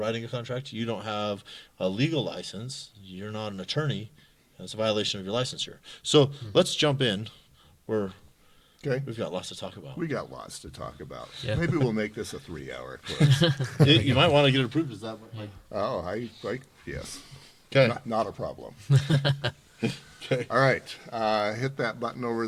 a contract. You don't have a legal license. You're not an attorney. It's a violation of your licensure. So let's jump in. We've got lots to talk about. We got lots to talk about. Yeah. Maybe we'll make this a 3-hour course. You might want to get it approved. Is that like? Oh, yes. Okay. Not a problem. Okay. All right, hit that button over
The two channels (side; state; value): both; identical; correlation 1.00